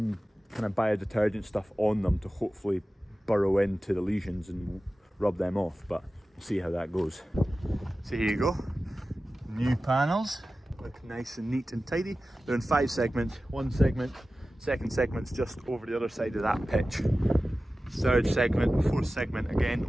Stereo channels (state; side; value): normal; both; correlation 0.95